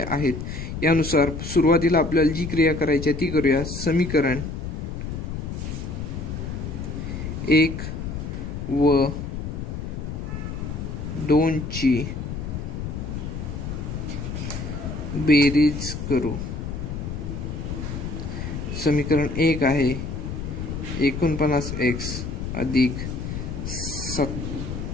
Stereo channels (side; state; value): left; noise; rumble, 5 dB below the sound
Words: आहेत. यानुसार सुरुवातीला आपल्याला जी क्रिया करायची आहे ती करूया. समीकरण 1 व 2 ची बेरीज करू. समीकरण 1 आहे 49x अधिक